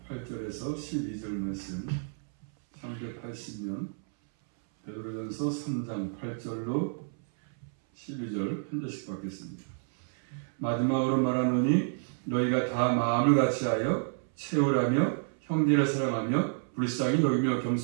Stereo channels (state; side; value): silent; left; 58 dB below the other